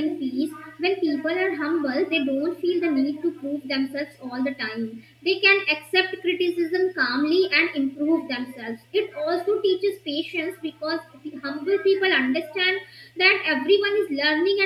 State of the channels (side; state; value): both; identical; correlation 1.00